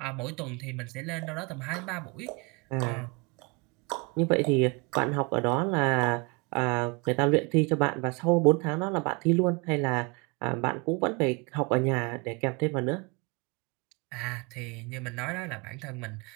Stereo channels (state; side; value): quieter; left; 29.3 dB